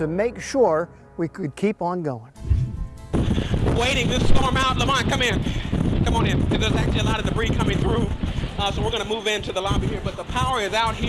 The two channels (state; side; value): identical; both; correlation 1.00